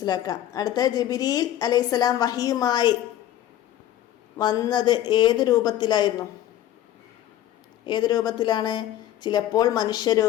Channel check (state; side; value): quieter; right; 12.5 dB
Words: അടുത്ത ജിബ്രീൽ അലൈഹിസ്സലാം വഹിയുമായി വന്നത് ഏത് രൂപത്തിലായിരുന്നു? ഏത് രൂപത്തിലാണ്? ചിലപ്പോൾ